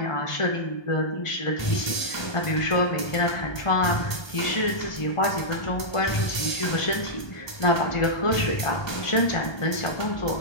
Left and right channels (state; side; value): late; right; 1.3 ms